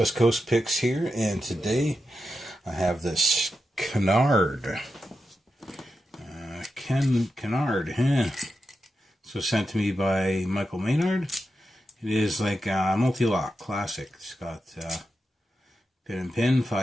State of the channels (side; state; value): both; normal; correlation 0.88